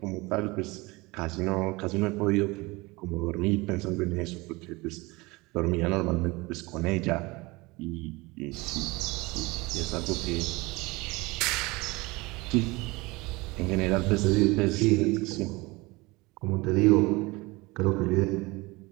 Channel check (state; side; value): quieter; left; 23.3 dB